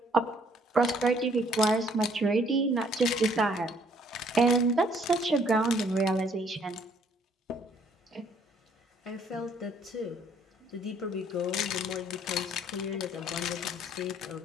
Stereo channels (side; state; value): both; normal; correlation 0.63